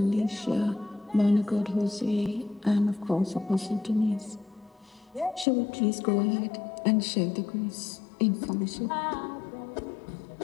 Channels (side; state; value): right; drops out; at 5.5 s